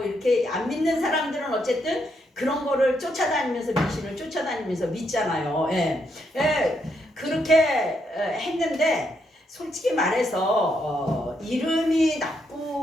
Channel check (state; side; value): normal; both; correlation 0.77